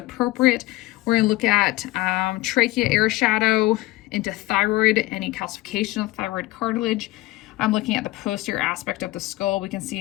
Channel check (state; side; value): quieter; right; 18.4 dB